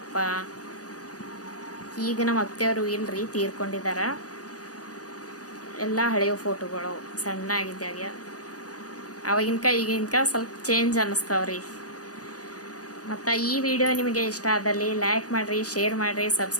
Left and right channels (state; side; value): late; right; 0.67 ms